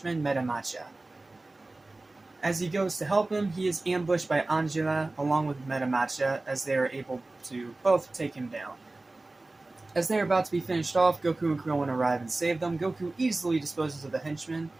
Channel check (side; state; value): left; quieter; 3.0 dB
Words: Metamacha. As he goes to help him, he is ambushed by Angela along with Metamacha, as they are able to both take him down. As they are about to be finished off, Goku and Krillin arrive and save them. Goku easily disposes of the henchman,